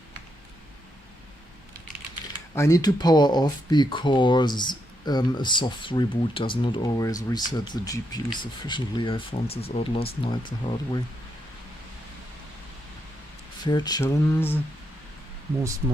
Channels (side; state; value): both; normal; correlation 0.80